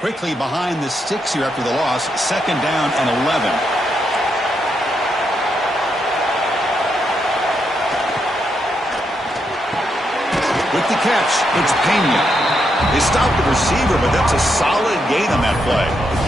behind the sticks here after the loss, 2nd down and 11. With the catch, it's Pena. They stopped the receiver, but that's a solid gain on that play.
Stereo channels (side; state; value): both; normal; correlation 0.80